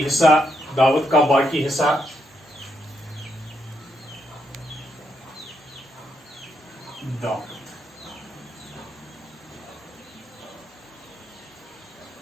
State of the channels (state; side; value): normal; both; correlation 0.79